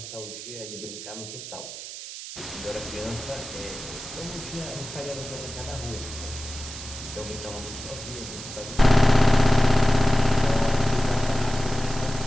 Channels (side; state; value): right; noise; hiss, 11 dB below the sound